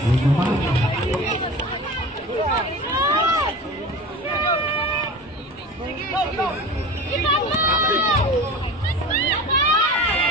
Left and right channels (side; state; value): both; normal; correlation 0.34